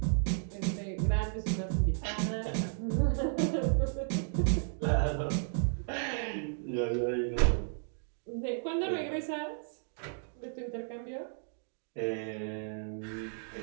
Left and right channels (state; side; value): silent; left; digital silence